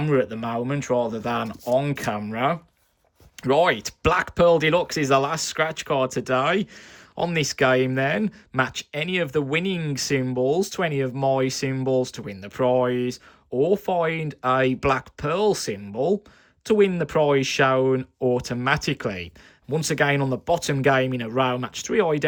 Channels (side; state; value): both; identical; correlation 1.00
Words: at the moment rather than on camera. Right, Black Pearl Deluxe is the last scratch card today. On this game then, match any of the winning symbols to any of my symbols to win the prize, or find a Black Pearl symbol to win the prize shown automatically. Once again, on the bottom game in a row, match 3